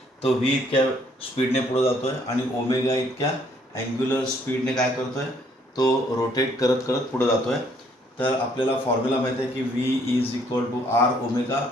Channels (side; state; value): both; normal; correlation 0.65